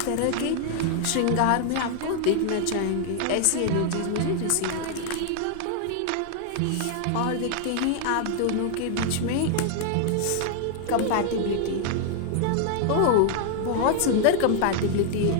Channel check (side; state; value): both; different; correlation 0.00